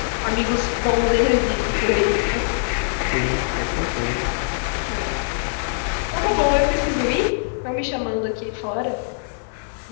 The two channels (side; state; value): right; silent; digital silence